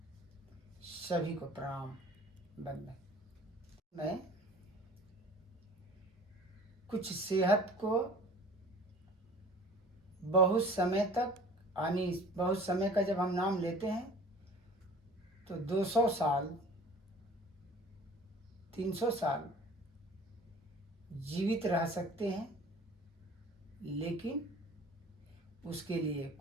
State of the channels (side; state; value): both; normal; correlation 0.46